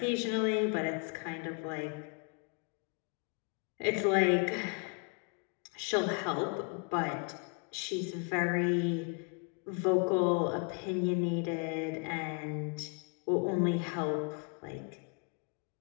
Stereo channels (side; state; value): right; quieter; 35.2 dB